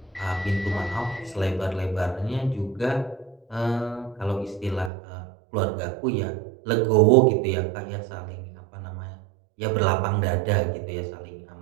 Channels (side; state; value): left; drops out; at 4.9 s